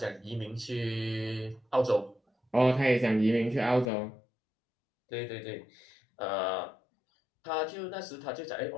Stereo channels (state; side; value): drops out; right; at 3.9 s